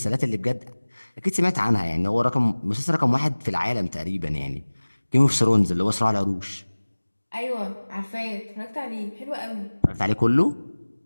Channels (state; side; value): inverted; both; correlation -1.00